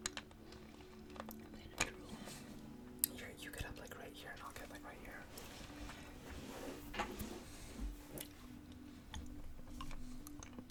I'm gonna drool. You get up like right here, and I'll get like right here.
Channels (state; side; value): identical; both; correlation 1.00